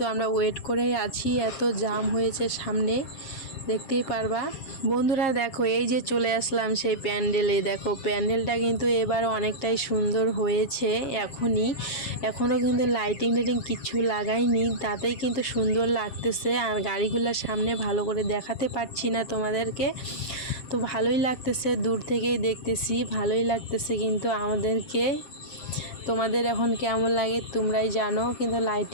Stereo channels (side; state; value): right; late; 7.5 ms